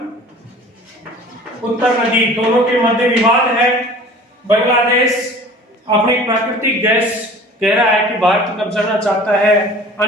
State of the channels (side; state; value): both; normal; correlation 0.45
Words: नदी। दोनों के मध्य विवाद है। बांग्लादेश अपनी प्राकृतिक गैस कह रहा है कि भारत कब्जाना चाहता है।